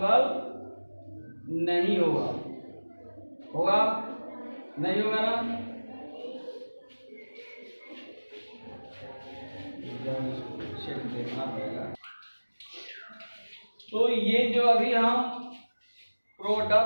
नहीं होगा। नहीं होगा ना। देखना पड़ेगा। तो ये जो अभी हम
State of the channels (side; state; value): both; inverted; correlation -1.00